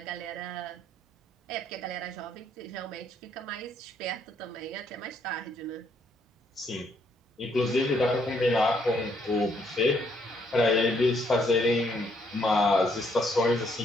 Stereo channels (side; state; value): both; normal; correlation 0.71